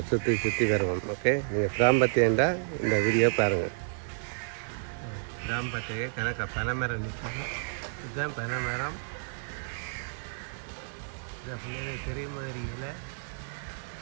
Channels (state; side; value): silent; left; digital silence